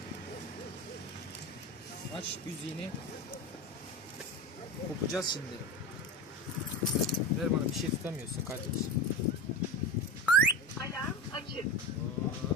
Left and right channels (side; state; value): both; normal; correlation 0.25